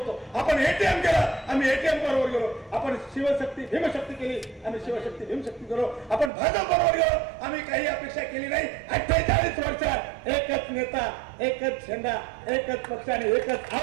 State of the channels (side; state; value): left; drops out; at 6.3 s